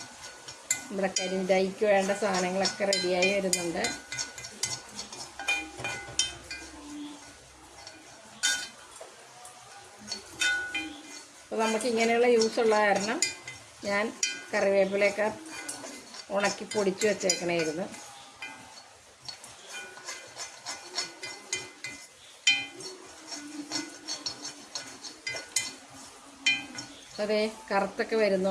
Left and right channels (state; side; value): identical; both; correlation 1.00